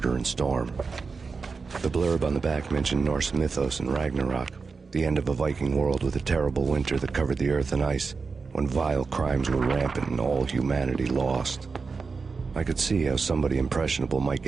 and Storm. The blurb on the back mentioned Norse mythos and Ragnarok, the end of a Viking world with a terrible winter that covered the earth in ice, when vile crimes were rampant and all humanity lost. I could see how somebody impressionable might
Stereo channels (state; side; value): quieter; left; 4.7 dB